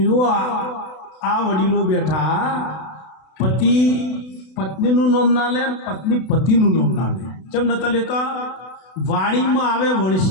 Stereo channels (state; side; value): late; right; 32 ms